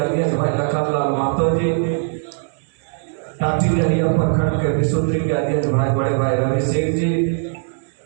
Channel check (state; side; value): silent; left; 66 dB below the other